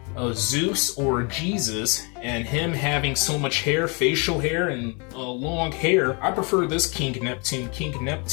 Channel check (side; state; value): right; quieter; 32.5 dB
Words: Zeus or Jesus, and him having so much hair, facial hair, and long hair. I prefer this King Neptune. King